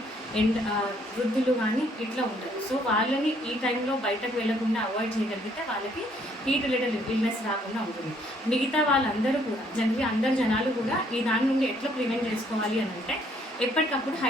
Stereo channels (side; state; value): both; normal; correlation 0.66